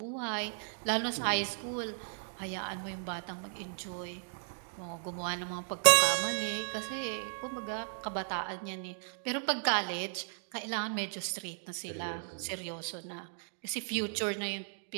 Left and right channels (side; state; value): left; silent; digital silence